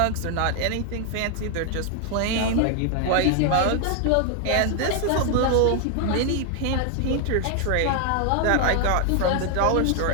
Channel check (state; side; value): different; both; correlation 0.00